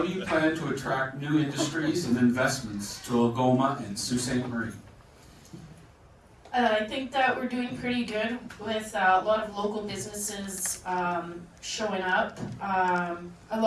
do you plan to attract new industries and investments to Algoma and Sault Ste. Marie? I think that we're doing pretty good with a lot of local businesses showing up. I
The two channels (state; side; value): identical; both; correlation 1.00